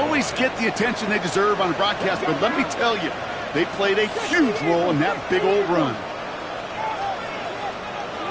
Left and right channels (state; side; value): identical; both; correlation 1.00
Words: get the attention they deserve on a broadcast, but let me tell you, they played a huge role in that big old run.